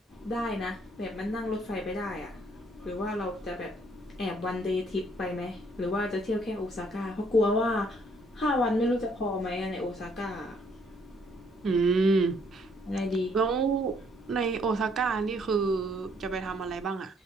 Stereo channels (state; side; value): normal; both; correlation 0.66